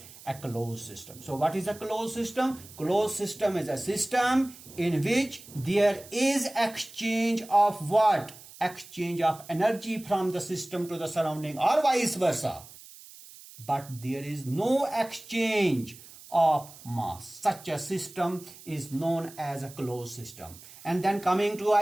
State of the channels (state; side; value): noise; right; hiss, 19 dB below the sound